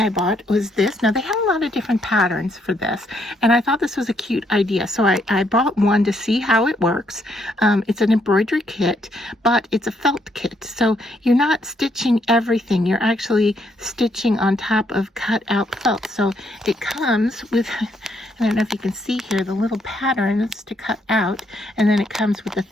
I bought was this. Now, they have a lot of different patterns for this, and I thought this was a cute idea. So I bought one to see how it works. It's an embroidery kit, but it's a felt kit. So you're not stitching everything. You're actually stitching on top of cut out felt. So it comes with, I don't know if you can see here, the little patterns to cut out, and then it comes with the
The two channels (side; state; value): both; normal; correlation 0.73